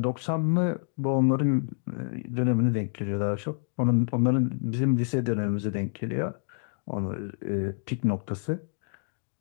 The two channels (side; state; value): right; silent; digital silence